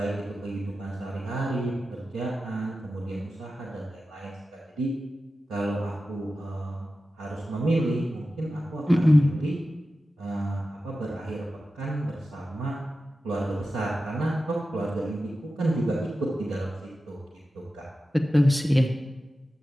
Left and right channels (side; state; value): both; normal; correlation 0.93